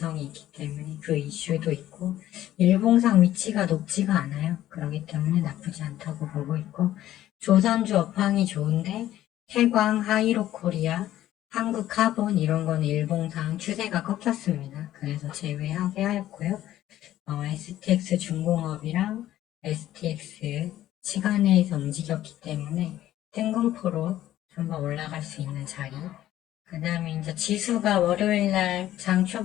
있기 때문에 그 이슈도 있고 일봉상 위치가 높지가 않아요. 그렇기 때문에 나쁘지 않다고 보고 있고 조선주 업황이 좋은데 태광, 하이로코리아, 한국카본 이런 거는 일봉상 추세가 꺾였습니다. 그래서 제외하게 하였고요. STX 중공업이랑 STX 시간에서 움직였기 때문에 뜬금포로 한번 올라갈 수 있는 자리. 그 다음에 이제 지수가 월요일날 장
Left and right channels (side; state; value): right; quieter; 13.3 dB